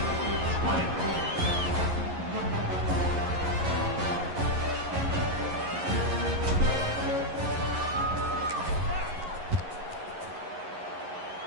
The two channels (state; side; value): late; left; 11 ms